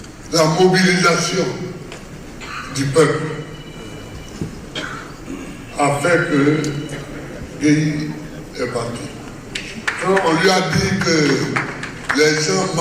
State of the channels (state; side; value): identical; both; correlation 1.00